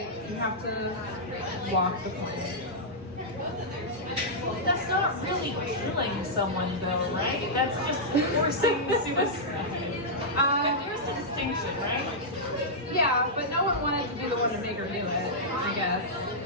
you have to walk the plank. That's not really killing someone, though, right? That's just forcing suicide. There's a distinction, right? Yeah, but no one wanted to be the one to make her do it, I guess.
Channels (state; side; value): normal; both; correlation -0.09